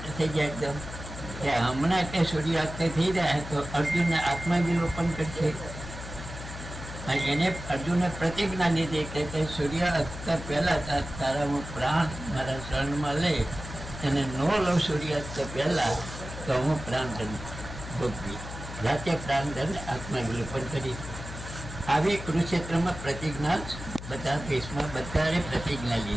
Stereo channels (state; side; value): noise; left; hum, 10 dB below the sound